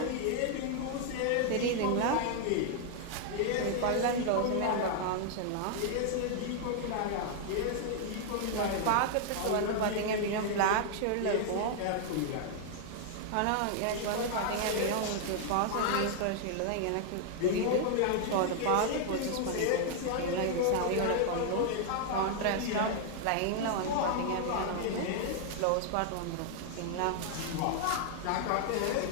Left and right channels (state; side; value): different; both; correlation 0.00